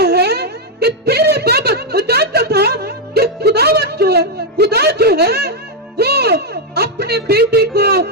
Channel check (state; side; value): normal; both; correlation 0.01